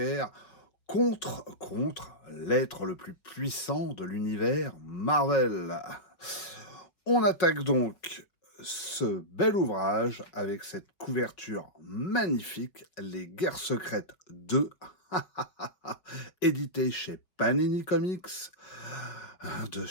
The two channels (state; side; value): late; right; 5.3 ms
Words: contre l'être le plus puissant de l'univers Marvel. On attaque donc ce bel ouvrage avec cette couverture magnifique, Les Guerres secrètes 2, édité chez Panini Comics, de